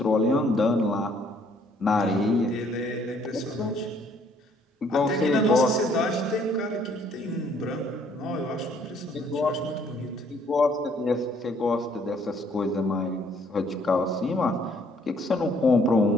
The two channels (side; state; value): both; normal; correlation 0.64